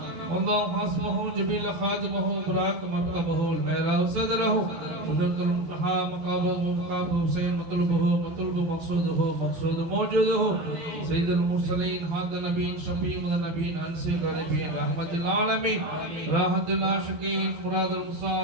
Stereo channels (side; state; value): left; late; 12 ms